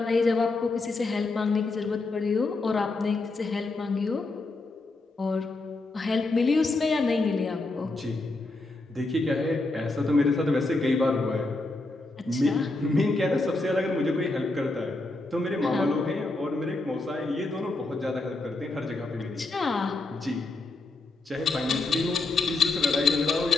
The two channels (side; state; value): right; quieter; 3.2 dB